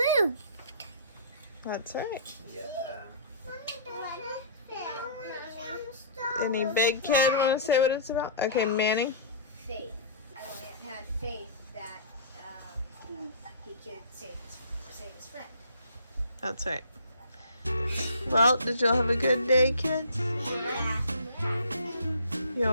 That's right. Yeah. Any big kid want to say what it's about? Okay, Manny. Faith. I had faith that he could save his friend. That's right. Well, did y'all have a good day, kids? Yeah.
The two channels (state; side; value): inverted; both; correlation -0.43